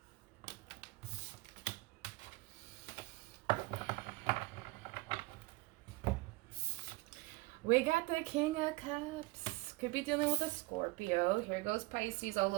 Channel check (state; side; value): quieter; left; 22.7 dB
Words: We got the King of Cups. Could be dealing with a Scorpio. Here goes Pisces all